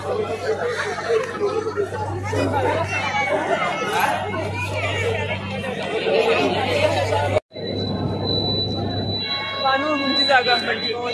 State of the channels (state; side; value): identical; both; correlation 1.00